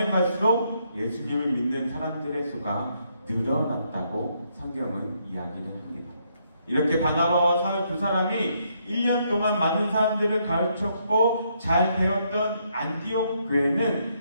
갈수록 예수님을 믿는 사람들의 수가 늘어났다고 성경은 이야기를 합니다. 이렇게 바나바와 사울 두 사람이 1년 동안 많은 사람들을 가르쳤고 잘 배웠던 안디옥 교회는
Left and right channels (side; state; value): both; inverted; correlation -0.74